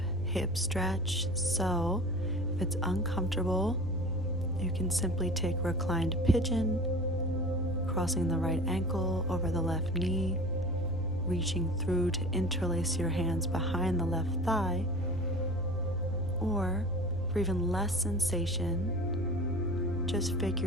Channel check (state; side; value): noise; right; hum, 11 dB below the sound